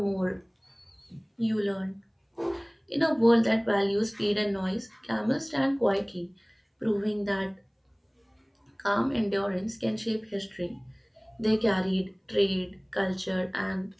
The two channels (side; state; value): both; identical; correlation 1.00